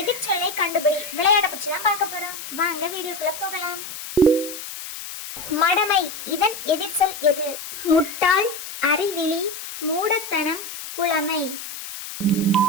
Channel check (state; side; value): noise; left; hiss, 10 dB below the sound